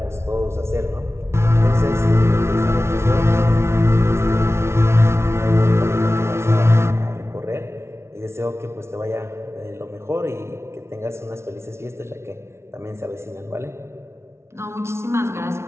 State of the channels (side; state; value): left; late; 0.13 ms